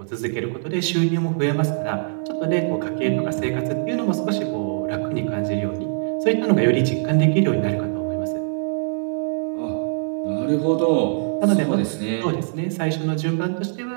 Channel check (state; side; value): silent; left; digital silence